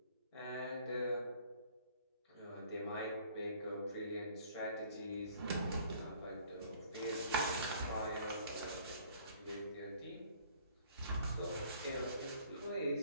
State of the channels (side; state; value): both; inverted; correlation -0.56